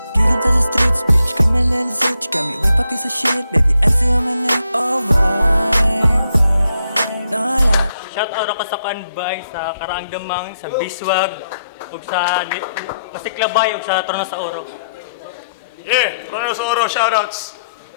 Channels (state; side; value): inverted; both; correlation -0.79